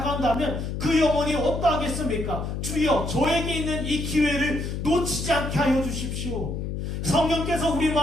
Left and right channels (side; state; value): left; noise; hum, 4 dB below the sound